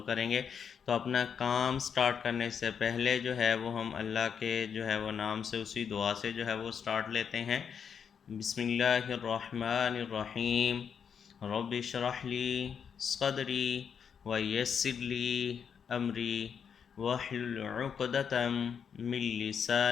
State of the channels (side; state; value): right; quieter; 7.2 dB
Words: करेंगे। तो अपना काम स्टार्ट करने से पहले जो है वो हम अल्लाह के जो है वो नाम से उसी दुआ से जो है वो स्टार्ट लेते हैं। बिस्मिल्लाहिर्रहमानिर्रहीम। रब्बि इश्रह ली सदरी व यस्सिर ली अमरी वहलुल उक़दतम मिन